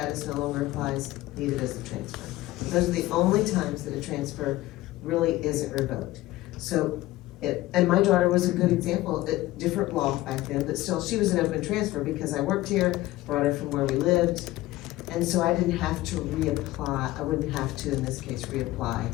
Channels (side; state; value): right; quieter; 17.2 dB